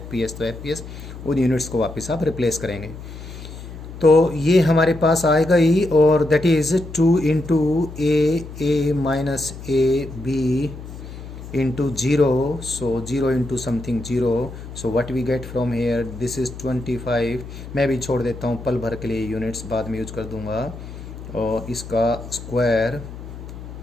तो FPS, उन यूनिट्स को वापस आप रिप्लेस करेंगे। तो ये हमारे पास आएगा ही, और that is 2 into a minus A B into 0, so 0 into something 0, so what we get from here, this is 25। मैं भी छोड़ देता हूँ पल भर के लिए, यूनिट्स बाद में यूज कर दूँगा। और इसका स्क्वायर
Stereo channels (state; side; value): noise; left; hum, 12 dB below the sound